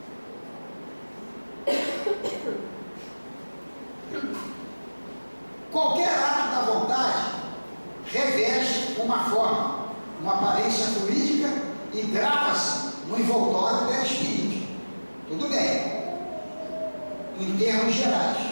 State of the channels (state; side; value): inverted; both; correlation -1.00